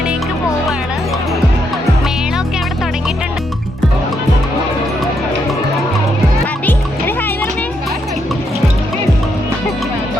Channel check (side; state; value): both; normal; correlation 0.78